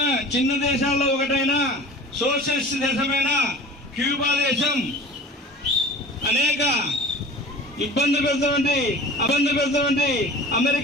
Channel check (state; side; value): normal; both; correlation 0.40